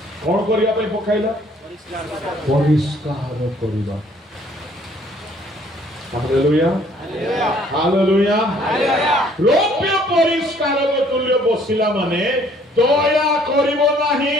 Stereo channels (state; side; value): normal; both; correlation 0.60